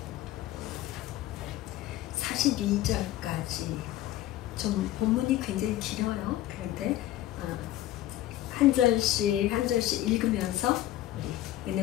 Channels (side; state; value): right; quieter; 14.3 dB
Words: 42절까지. 좀 본문이 굉장히 길어요. 그런데 한 절씩 읽으면서 우리